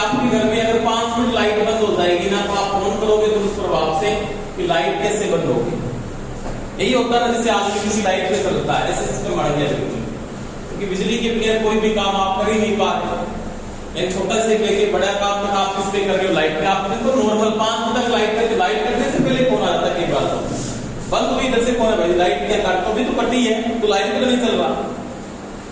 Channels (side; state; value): both; identical; correlation 1.00